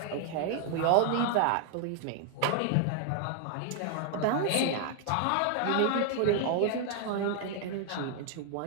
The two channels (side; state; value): both; different; correlation 0.00